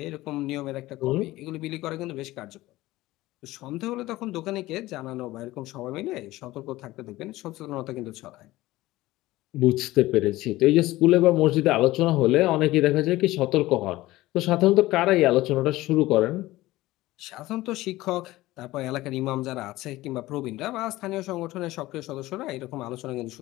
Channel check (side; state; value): right; quieter; 17.7 dB